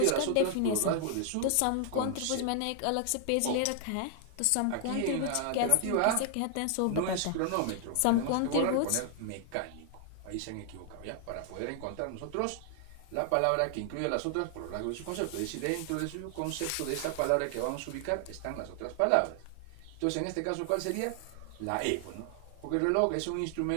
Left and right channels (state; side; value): different; both; correlation 0.00